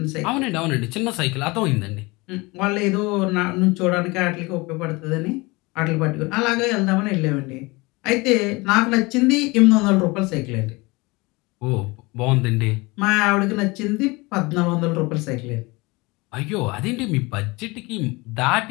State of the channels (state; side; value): quieter; right; 24.3 dB